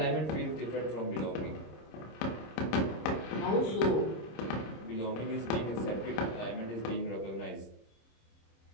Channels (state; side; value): late; right; 26 ms